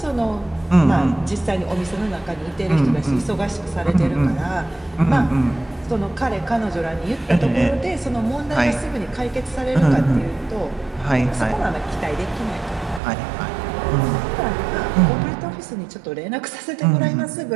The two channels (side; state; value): left; drops out; at 13.0 s